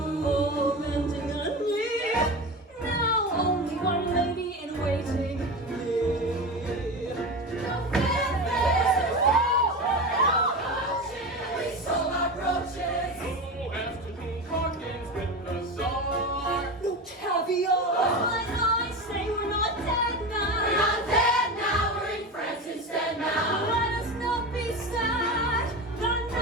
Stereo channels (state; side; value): normal; both; correlation 0.24